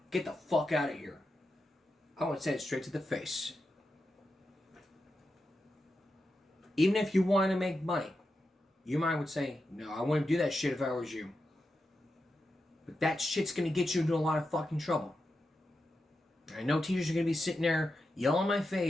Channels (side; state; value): both; normal; correlation 0.89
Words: Get the fuck out of here. I would say it straight to the face. Even if you wanted to make money, your mind would say, no, I wouldn't do that shit if I was you. But that shit's going to get you into a lot of fucking trouble. I know teachers are going to be sitting there yelling in my